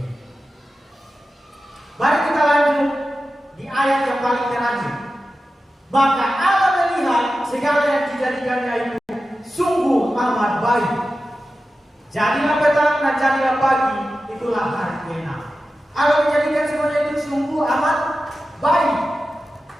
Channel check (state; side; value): normal; both; correlation 0.93